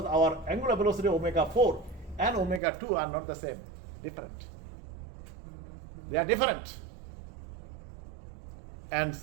our angular velocity omega 4 and omega 2 are not the same, different. They are different. And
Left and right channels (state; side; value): drops out; left; at 2.6 s